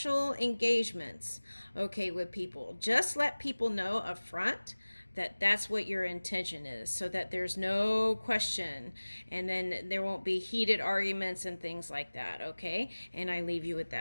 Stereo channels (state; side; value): inverted; both; correlation -1.00